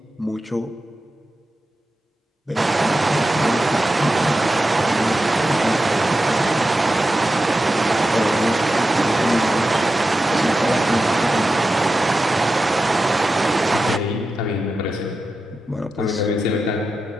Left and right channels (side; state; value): both; normal; correlation 0.91